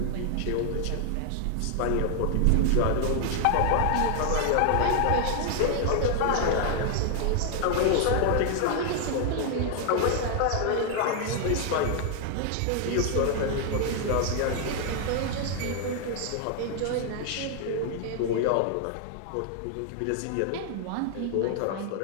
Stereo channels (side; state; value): both; different; correlation 0.00